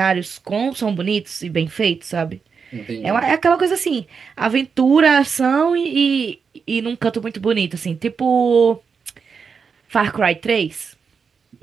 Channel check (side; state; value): left; quieter; 5.8 dB